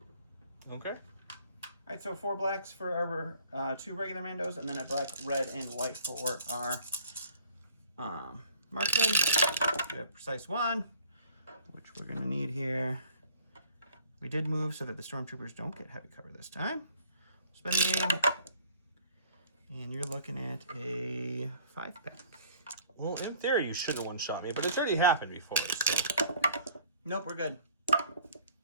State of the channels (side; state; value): both; inverted; correlation -0.54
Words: Okay. All right, so 4 blacks for our 2 regular Mandos, and then a black, red, and white for our marksman. We have precise 1, which we're going to need here. We did move so that the Stormtroopers don't get heavy cover this time. Spend the aim, and you're looking at a 5-pack. Well, in theory, you should have one-shot me, but it's already happened before. So. Nope, we're good.